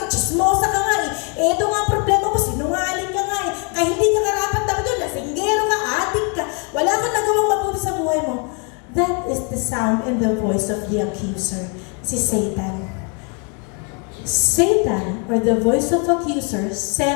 chismosa ka nga, ito nga ang problema mo, sinungaling ka nga, kaya hindi ka karapat dapat doon, lasinggero ka, adik ka, wala kang nagawang mabuti sa buhay mo. That is the sound and the voice of the accuser, si Satan. Satan, or the voice of accuser,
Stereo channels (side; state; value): right; quieter; 36.8 dB